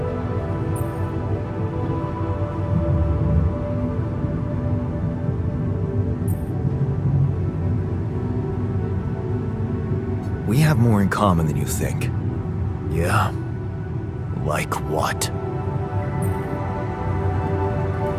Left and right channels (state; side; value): identical; both; correlation 1.00